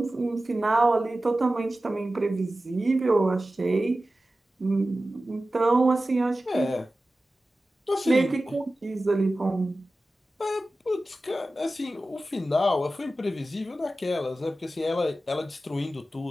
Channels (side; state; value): both; normal; correlation 0.95